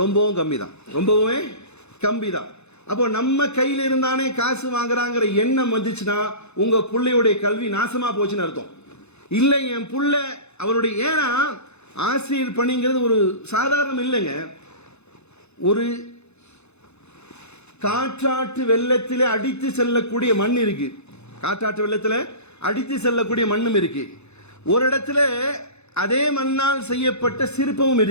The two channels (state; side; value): late; right; 0.81 ms